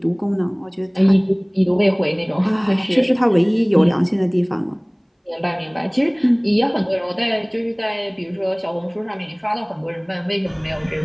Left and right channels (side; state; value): both; identical; correlation 1.00